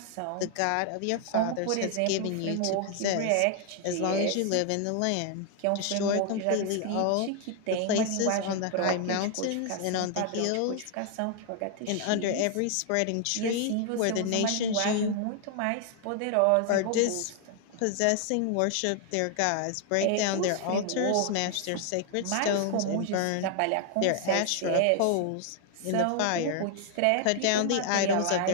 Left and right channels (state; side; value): different; both; correlation 0.00